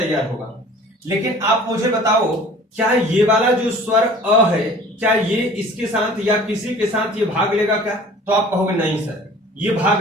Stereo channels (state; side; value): normal; both; correlation 0.46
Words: होगा, लेकिन आप मुझे बताओ क्या ये वाला जो स्वर अ है, क्या ये इसके साथ या किसी के साथ ये भाग लेगा क्या? तो आप कहोगे नहीं सर ये भाग